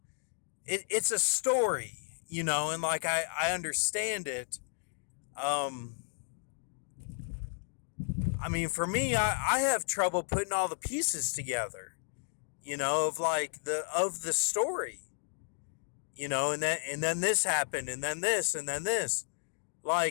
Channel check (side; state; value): right; silent; digital silence